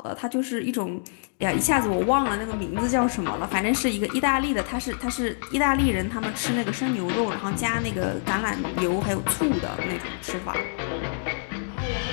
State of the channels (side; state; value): right; silent; digital silence